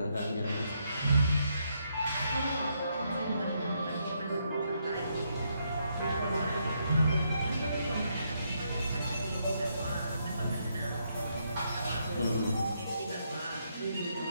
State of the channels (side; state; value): both; inverted; correlation -0.77